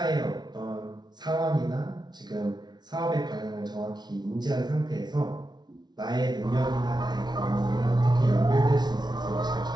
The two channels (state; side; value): late; left; 0.20 ms